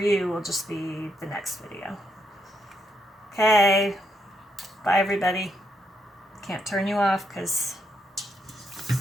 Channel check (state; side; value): normal; both; correlation 0.78